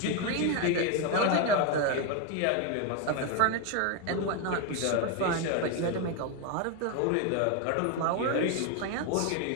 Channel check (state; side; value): different; both; correlation 0.02